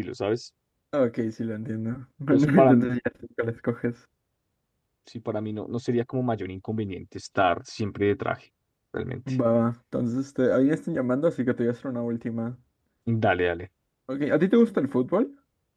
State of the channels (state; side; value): identical; both; correlation 1.00